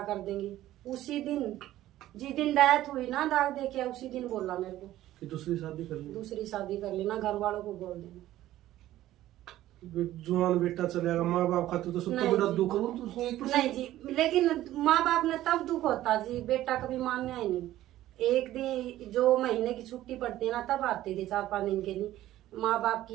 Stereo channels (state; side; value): quieter; left; 14.3 dB